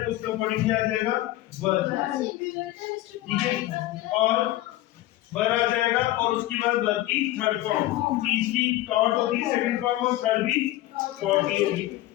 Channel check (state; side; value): quieter; right; 15.9 dB